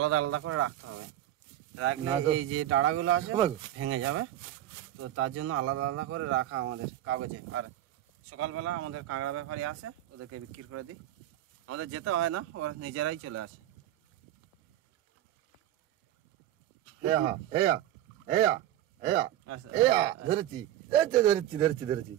আলাদা করে রাখতে হবে। রাখলে না তো এই যে ডাড়াগুলো আছে ভেঙে যাবে, তো তার জন্য আলাদা আলাদা করে রাখা আমাদের কাগজে। আর সকালবেলা আমাদের কাঁকড়া ব্যাপারী আসে, ওদেরকে বিক্রি করে দিই। আমাদের যেতে হয় না, ওরা নিজেরাই চলে আসে। ধরেছি ধরেছি ধরেছি ধরেছি।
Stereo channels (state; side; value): quieter; left; 12.8 dB